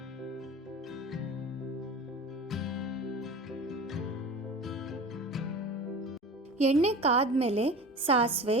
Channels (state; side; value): normal; both; correlation 0.35